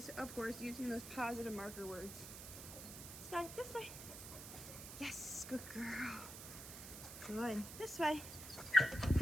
of course, using those positive marker words. Sky, this way. Yes, good girl. Good. This way. Good.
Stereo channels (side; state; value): right; noise; hiss, 10 dB below the sound